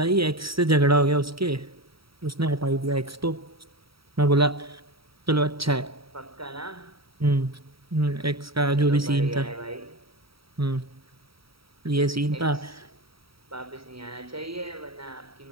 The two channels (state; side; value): late; left; 0.75 ms